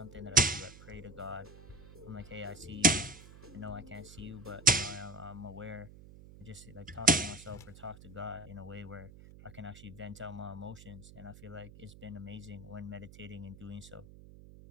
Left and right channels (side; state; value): right; noise; hum, 18 dB below the sound